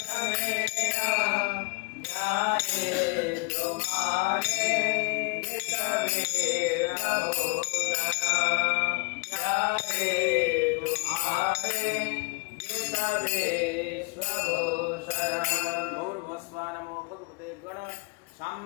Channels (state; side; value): quieter; right; 31.4 dB